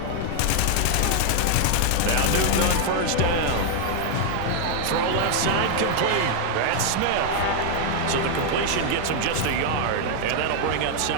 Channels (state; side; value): different; both; correlation 0.00